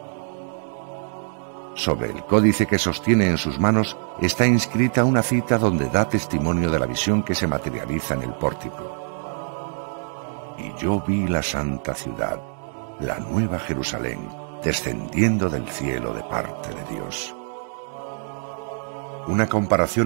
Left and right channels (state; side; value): silent; left; digital silence